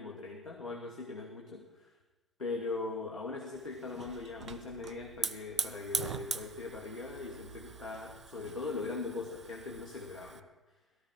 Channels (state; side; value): normal; both; correlation 0.38